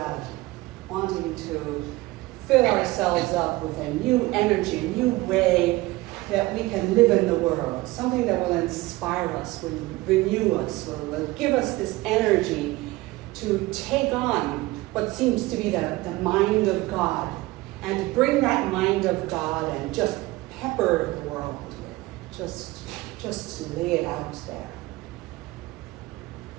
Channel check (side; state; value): left; quieter; 19.9 dB